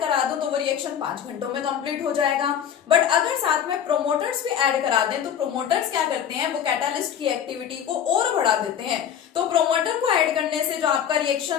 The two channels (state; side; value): quieter; right; 8.9 dB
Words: करा दूं तो वो रिएक्शन 5 घंटों में कंप्लीट हो जाएगा। बट अगर साथ में प्रोमोटर्स भी ऐड करा दें तो प्रोमोटर्स क्या करते हैं, वो कैटालिस्ट की एक्टिविटी को और बढ़ा देते हैं। तो प्रोमोटर को ऐड करने से जो आपका